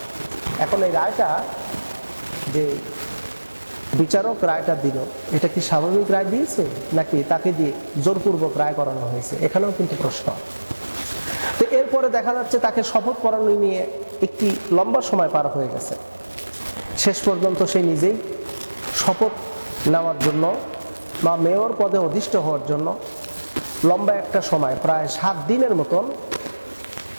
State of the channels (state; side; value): inverted; both; correlation -1.00